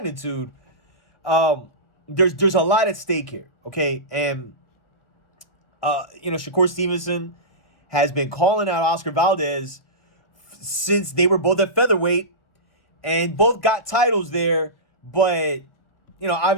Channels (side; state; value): right; late; 1.4 ms